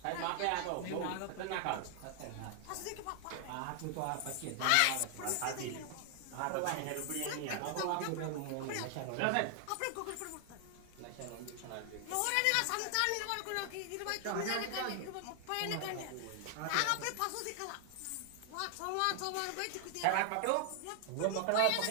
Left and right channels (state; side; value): different; both; correlation 0.00